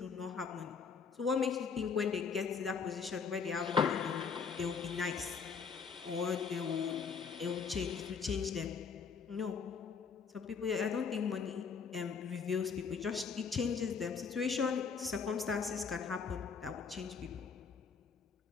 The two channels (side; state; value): right; quieter; 5.9 dB